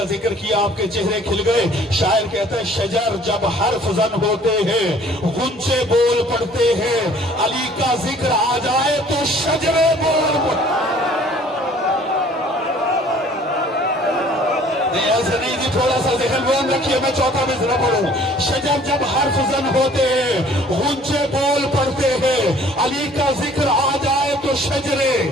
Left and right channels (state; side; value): normal; both; correlation 0.54